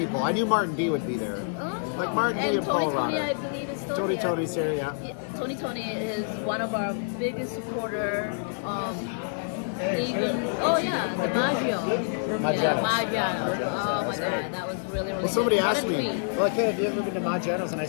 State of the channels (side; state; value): right; silent; 60 dB below the other